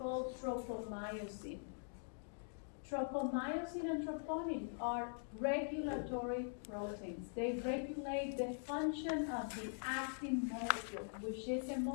tropomyosin. Tropomyosin and troponin are regulatory proteins. They regulate the function of the actin molecule, which is a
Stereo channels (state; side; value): silent; right; digital silence